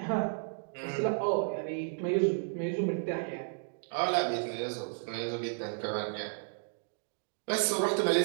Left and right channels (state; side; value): silent; left; digital silence